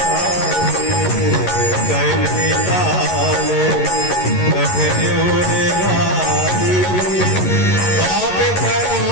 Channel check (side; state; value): right; late; 11 ms